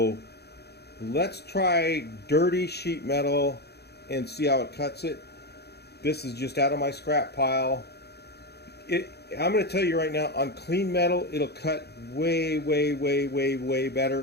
let's try dirty sheet metal and see how it cuts it. This is just out of my scrap pile. I'm going to tell you right now, on clean metal, it'll cut way, way, way, way, way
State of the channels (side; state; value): right; late; 0.48 ms